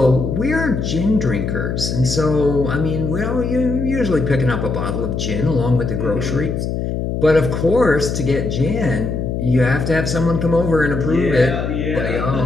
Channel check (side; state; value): left; noise; hum, 2 dB below the sound